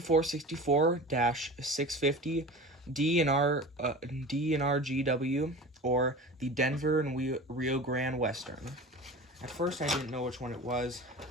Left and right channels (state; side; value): normal; both; correlation 0.35